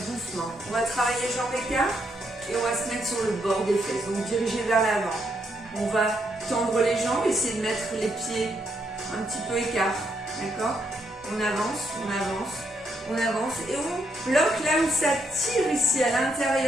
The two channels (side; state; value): both; normal; correlation 0.77